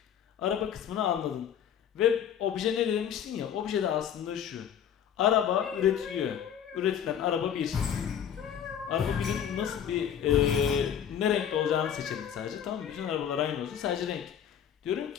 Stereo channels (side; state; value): right; quieter; 8.9 dB